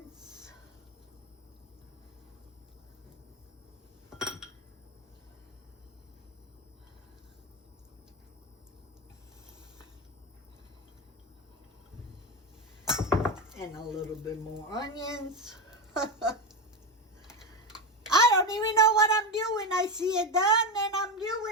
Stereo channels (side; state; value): both; normal; correlation 0.15